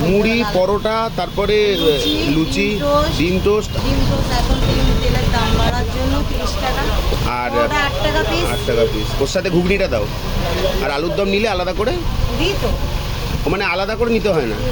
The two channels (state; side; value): identical; both; correlation 1.00